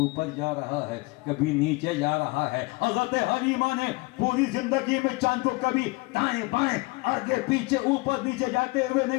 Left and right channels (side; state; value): right; quieter; 25.0 dB